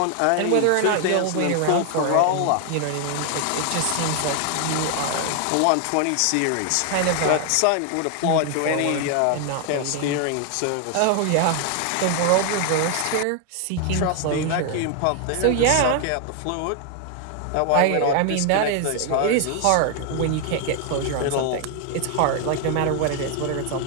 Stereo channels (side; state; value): both; different; correlation 0.00